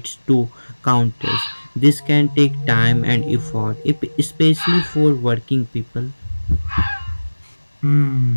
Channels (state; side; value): inverted; both; correlation -1.00